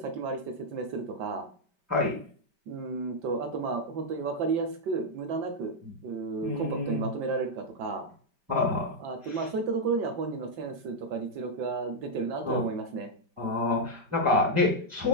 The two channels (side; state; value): left; late; 5.1 ms